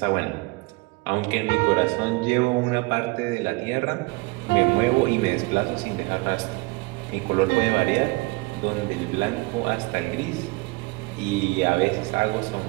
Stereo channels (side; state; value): left; quieter; 24.2 dB